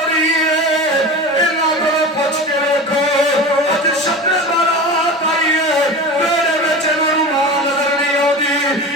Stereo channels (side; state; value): both; normal; correlation 0.30